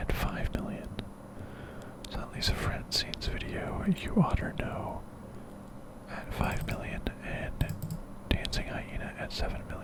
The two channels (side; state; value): both; identical; correlation 1.00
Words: 5 million. So at least Francine's video, You Oughter Know, at 5 million and Dancing Hyena at 7